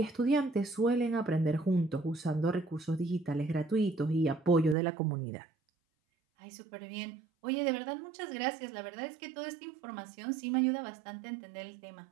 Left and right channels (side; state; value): left; drops out; at 4.8 s